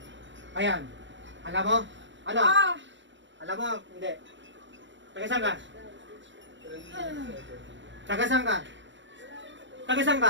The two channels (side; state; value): left; late; 0.54 ms